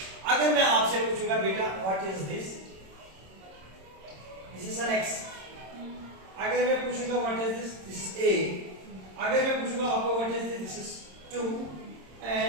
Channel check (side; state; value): left; late; 26 ms